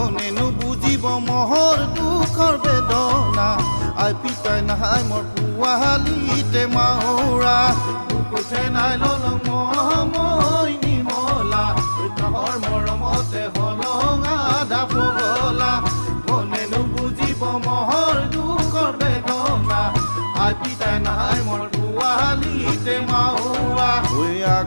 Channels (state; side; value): inverted; both; correlation -1.00